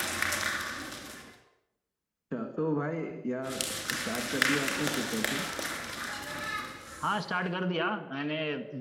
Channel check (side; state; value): both; identical; correlation 1.00